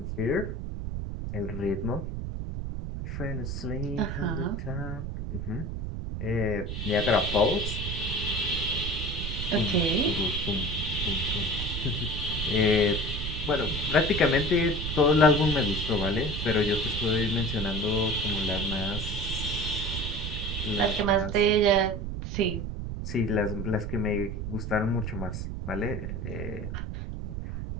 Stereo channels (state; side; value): noise; right; rumble, 4 dB below the sound